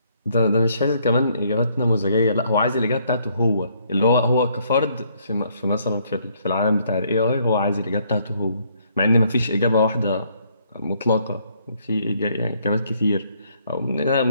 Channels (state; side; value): inverted; both; correlation -0.68